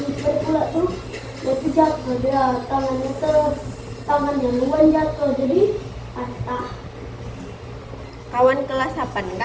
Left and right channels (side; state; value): both; identical; correlation 1.00